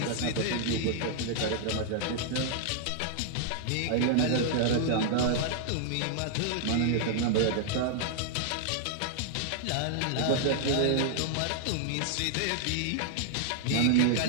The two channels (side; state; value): both; different; correlation -0.01